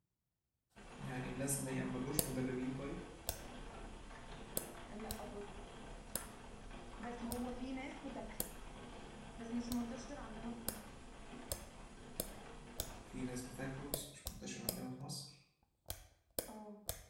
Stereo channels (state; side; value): identical; both; correlation 1.00